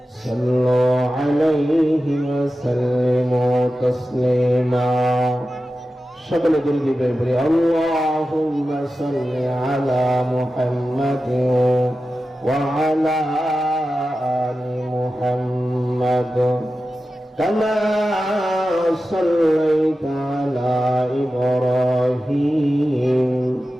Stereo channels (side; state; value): both; normal; correlation 0.93